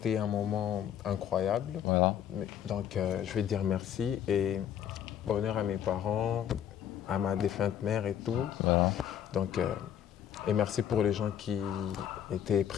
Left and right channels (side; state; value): right; quieter; 9.7 dB